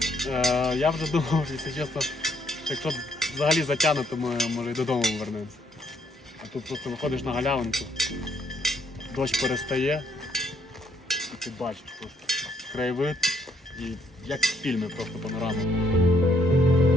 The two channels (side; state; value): both; normal; correlation 0.70